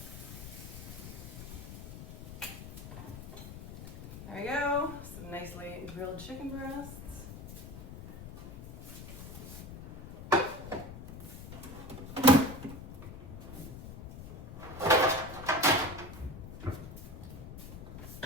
There we go, some nicely grilled chicken breasts.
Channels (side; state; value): left; noise; rumble, 11 dB below the sound